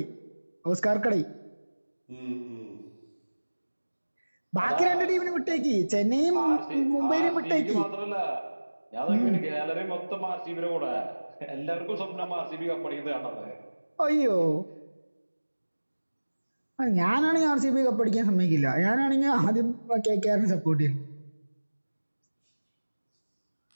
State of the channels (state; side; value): inverted; both; correlation -1.00